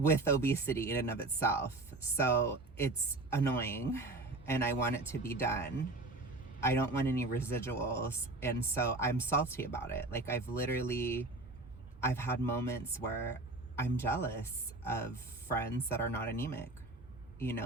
obesity in and of itself. So it's annoying and I want it to be done. I don't want any residuals. And so I'm salty about it. Like I've had moments where I'm jealous of friends that are not anemic,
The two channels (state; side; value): quieter; left; 3.1 dB